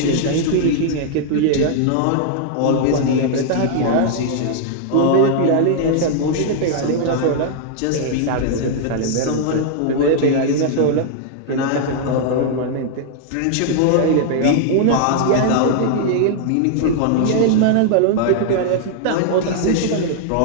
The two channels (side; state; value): both; different; correlation -0.01